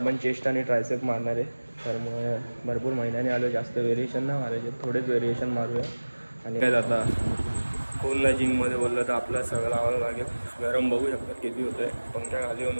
चेस्ट आणि ट्रायसेप मारणार आहे. तर मग भरपूर महिन्याने आलो, जास्त व्हेरिएशन नाही मारायचे, थोडेच व्हेरिएशन मारूया. आणि काय, आता कोण नाही जिममध्ये बोललं तर आपलं सगळं लावावं लागेल. गरम बघू शकतात किती होतं आहे, पंख्या खाली येऊन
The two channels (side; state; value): both; inverted; correlation -1.00